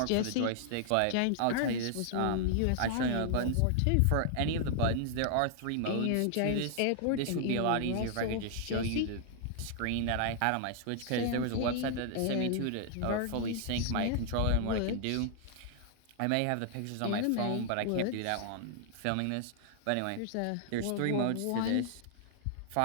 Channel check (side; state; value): both; different; correlation 0.00